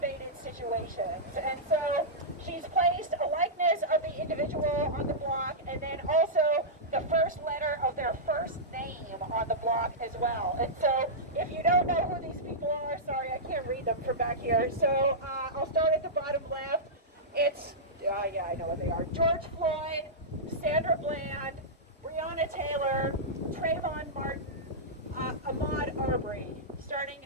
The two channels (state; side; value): normal; both; correlation -0.13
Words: situations. And so she's placed a likeness of the individual on the block, and then also the first letter of their first name on the block as well. And so if you don't know who these people are, sorry, I can't read them from back here. So I'll start at the bottom left. It's, yeah, I know what they are. George Floyd, Sandra Bland, Breonna Taylor, Trayvon Martin, Ahmaud Arbery.